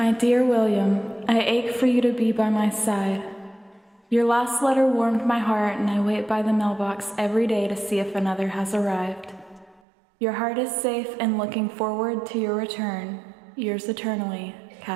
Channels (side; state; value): left; drops out; at 9.8 s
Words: dear William, I ache for you to be by my side. Your last letter warmed my heart, and I wait by the mailbox every day to see if another has arrived. Your heart is safe and looking forward to your return. Yours eternally,